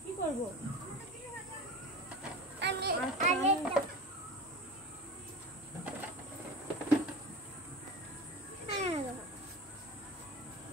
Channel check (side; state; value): both; normal; correlation 0.31